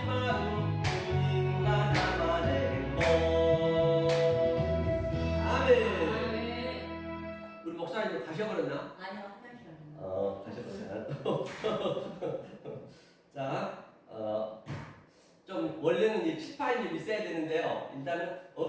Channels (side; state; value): both; identical; correlation 1.00